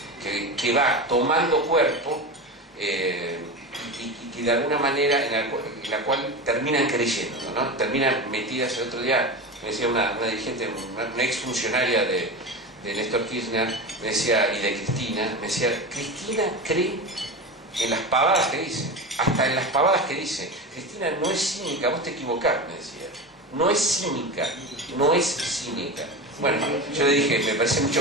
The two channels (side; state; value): both; normal; correlation 0.24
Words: que va tomando cuerpo y que de alguna manera en la cual terminan creyendo, ¿no? Terminan metidas. El otro día me decía una dirigente, una exfuncionaria de Néstor Kirchner, me decía, y de Cristina, me decía, Cristina cree en las pavadas que dice, hasta en las pavadas que dice. Cristina no es cínica, vos te equivocás, me decía. No es cínica, no es cínica. Bueno, yo le dije, me parece